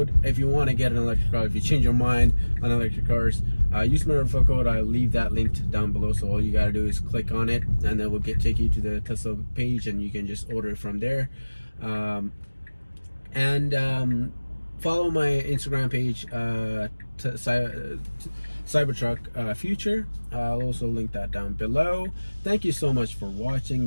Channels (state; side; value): inverted; both; correlation -1.00